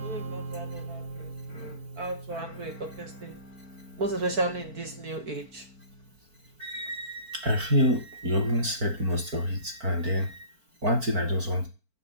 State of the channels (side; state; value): left; late; 4.5 ms